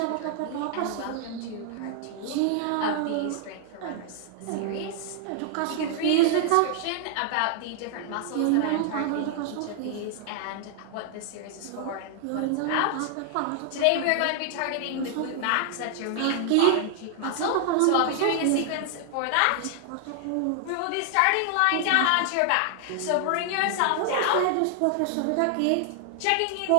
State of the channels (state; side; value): different; both; correlation 0.00